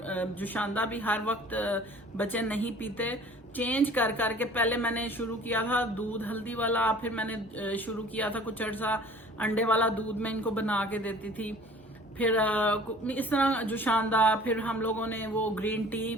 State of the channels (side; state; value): both; normal; correlation 0.49